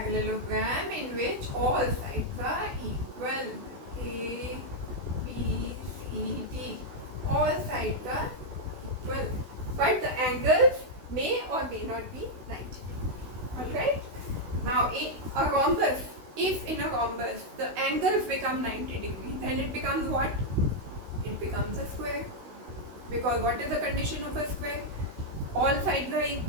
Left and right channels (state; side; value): late; left; 16 ms